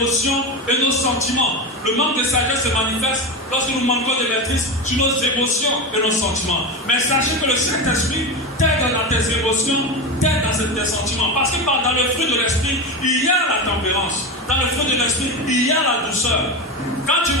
et nos sentiments. Le manque de sagesse se manifeste lorsque nous manquons de maîtrise sur nos émotions et nos sentiments. Mais sachez que le Saint-Esprit t'aide dans tes émotions, t'aides dans tes sentiments. Parce que dans le fruit de l'esprit, il y a la tempérance. Dans le fruit de l'esprit, il y a la douceur. Quand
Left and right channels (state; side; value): normal; both; correlation 0.20